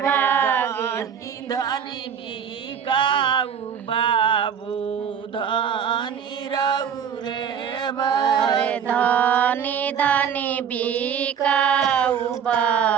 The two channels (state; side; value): quieter; left; 7.8 dB